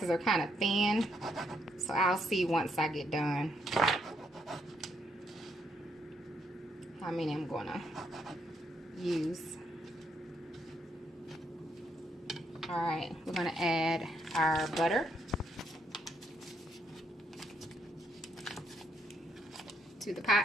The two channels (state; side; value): normal; both; correlation 0.75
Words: are kind of thin, so I'll see once I get done how many I'm going to use. All right, we're going to add our butter to the